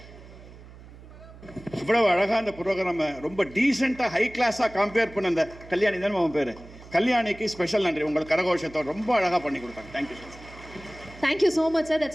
இவ்வளவு அழகாக அந்த ப்ரோக்ராம் ரொம்ப டீசெண்டாக ஹை கிளாஸாக கம்பேர் பண்ண அந்த கல்யாணி தானே அவன் பேர், கல்யாணிக்கு ஸ்பெஷல் நன்றி. உங்களுக்கு கரகோஷத்தோடு ரொம்ப அழகாக பண்ணி கொடுத்தாங்க. Thank you so much. Thank you so much, sir.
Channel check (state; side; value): noise; right; hum, 19 dB below the sound